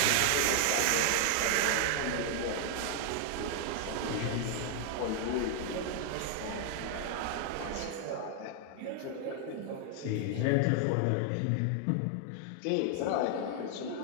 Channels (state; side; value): different; both; correlation 0.00